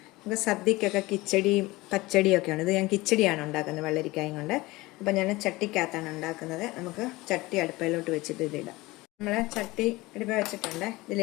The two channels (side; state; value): right; quieter; 20.8 dB